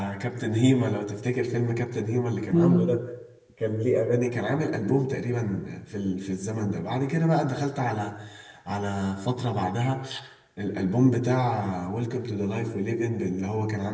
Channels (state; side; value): identical; both; correlation 1.00